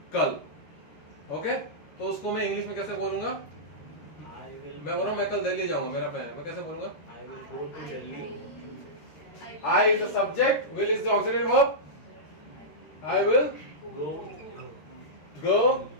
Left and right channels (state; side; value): late; right; 13 ms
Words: कल. ओके, तो उसको मैं इंग्लिश में कैसे बोलूंगा? मैं बोल रहा हूँ मैं कल दिल्ली जाऊंगा, मेरा प्लान है, मैं कैसे बोलूंगा? I will go to Delhi. I is the subject, will is the auxiliary verb. I will go